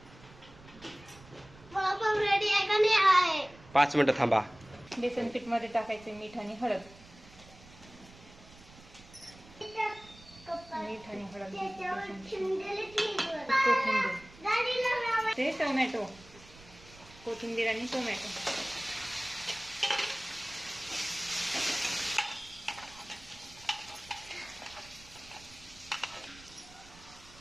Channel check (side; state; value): right; noise; rumble, 22 dB below the sound